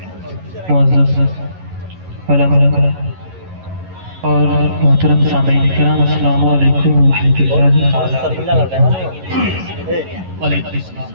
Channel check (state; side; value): late; left; 11 ms